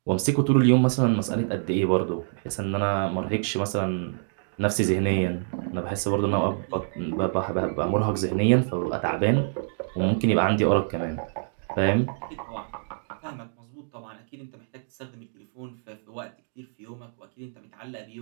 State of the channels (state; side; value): silent; left; digital silence